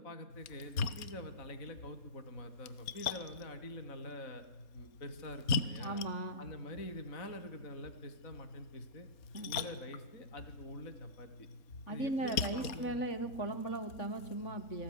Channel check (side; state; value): right; late; 4.2 ms